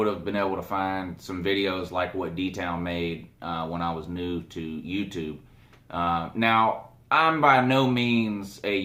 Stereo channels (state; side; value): identical; both; correlation 1.00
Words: have been able to find some videos like what DTown made when I was new to YouTube. Now, I'm by no means a